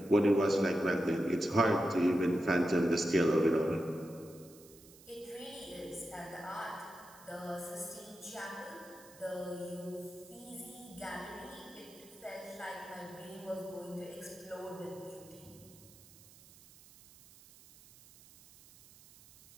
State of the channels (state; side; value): noise; right; hiss, 22 dB below the sound